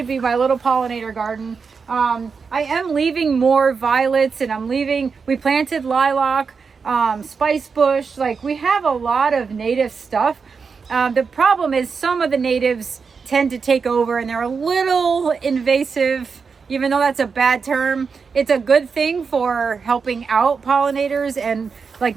be my little pollinator garden. I am leaving more violets and we planted lilac, spice bush. Like we have a lot of native stuff. The problem is some of the natives tend to take over and they're a little invasive, even though that's a bad term. It's a good thing for helping out pollinators and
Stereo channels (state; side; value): quieter; left; 5.4 dB